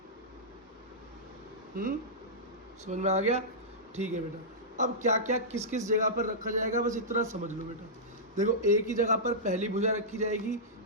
समझ में आ गया? ठीक है बेटा। अब क्या क्या किस किस जगह पर रखा जाएगा बस इतना समझ लो बेटा। देखो a की जगह पर पहली भुजा रखी जाएगी,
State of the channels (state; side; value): normal; both; correlation -0.14